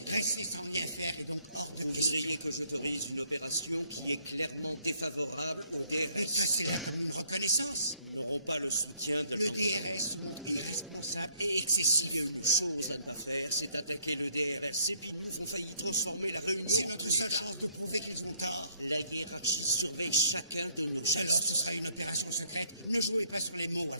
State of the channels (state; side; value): inverted; both; correlation -0.65